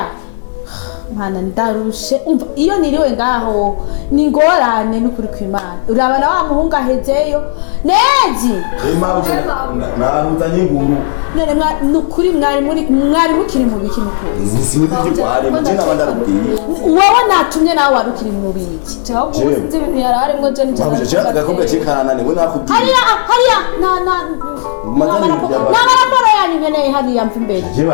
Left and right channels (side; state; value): right; silent; digital silence